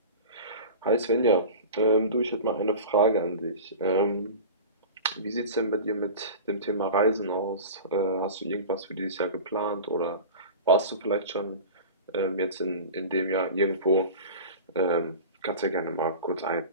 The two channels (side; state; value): both; inverted; correlation -0.34